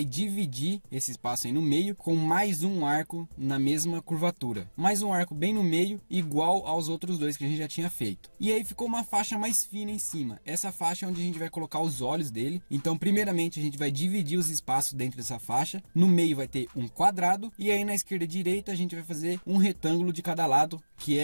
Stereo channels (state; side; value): inverted; both; correlation -1.00